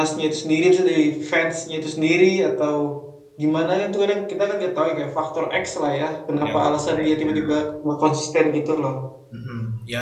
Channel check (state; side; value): identical; both; correlation 1.00